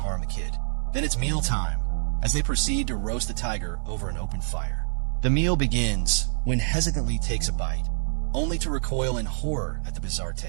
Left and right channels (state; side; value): silent; left; digital silence